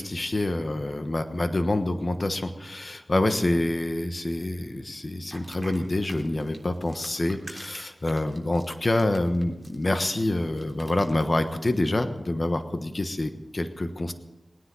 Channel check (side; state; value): both; normal; correlation 0.98